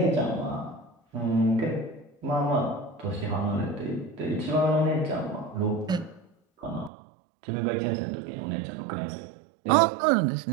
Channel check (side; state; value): left; drops out; at 6.9 s